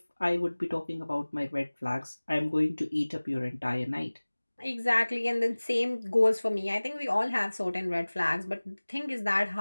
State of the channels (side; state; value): both; inverted; correlation -1.00